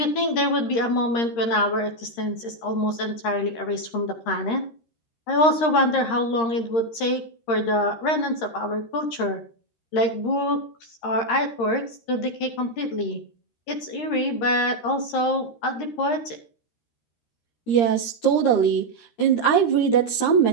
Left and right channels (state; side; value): late; right; 13 ms